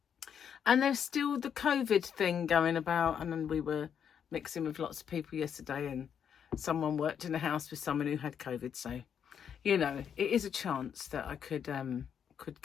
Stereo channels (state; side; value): quieter; right; 8.0 dB